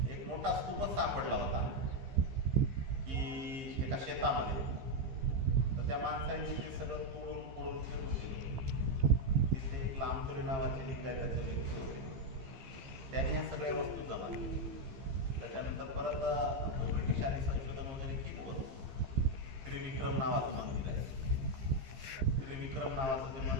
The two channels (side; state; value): left; late; 15 ms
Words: एक मोठा स्तूपच सापडला होता की एका शेतामध्ये, तर त्या माणसाने ते सगळं तोडून फोडून फेकून दिलं. तिथे एक लांबकरी नावाचे लिंगायताचे व्यक्ती होते, त्याने ह्या सगळ्या वस्तू जमा केल्या. त्याच्यानंतर परत ब्रिटिशांनी संशोधन वगैरे केलं होतं. त्रिविक्रम नावाचं मंदिर आहे, त्रिविक्रम नावाचं जे